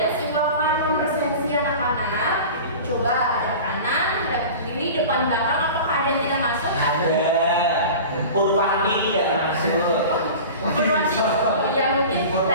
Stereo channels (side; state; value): both; inverted; correlation -0.36